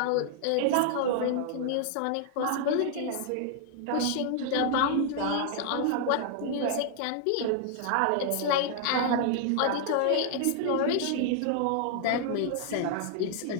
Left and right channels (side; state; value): both; different; correlation 0.00